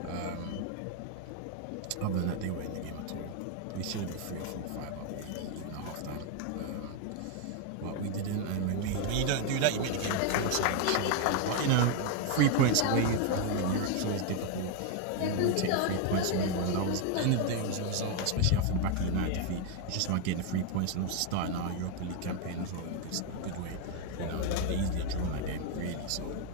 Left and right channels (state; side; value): different; both; correlation 0.01